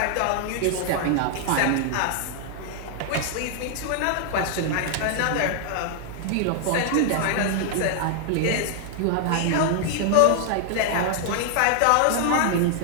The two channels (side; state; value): both; different; correlation 0.00